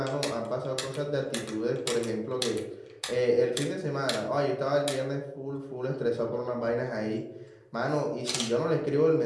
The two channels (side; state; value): both; identical; correlation 1.00